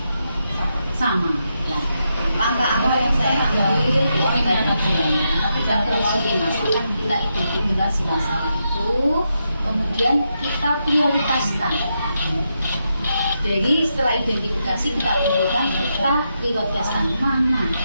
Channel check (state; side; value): inverted; both; correlation -0.84